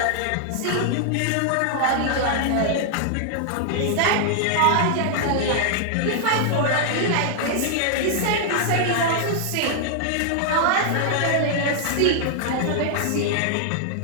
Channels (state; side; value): different; both; correlation 0.00